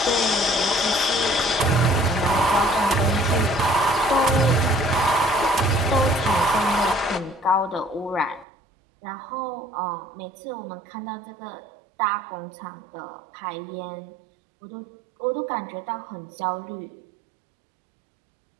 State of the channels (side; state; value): left; drops out; at 8.5 s